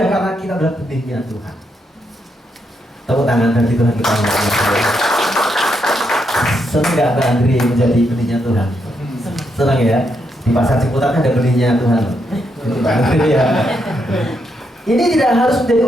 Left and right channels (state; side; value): normal; both; correlation 0.79